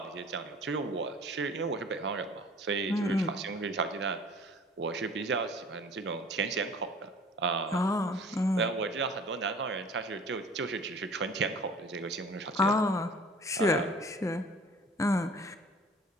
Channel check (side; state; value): both; normal; correlation 0.47